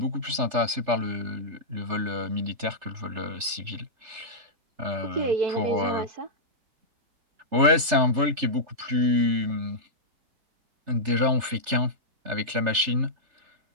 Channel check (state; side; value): late; left; 3.3 ms